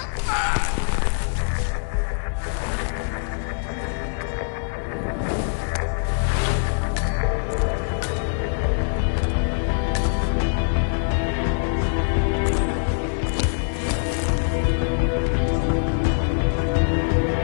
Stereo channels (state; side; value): silent; right; digital silence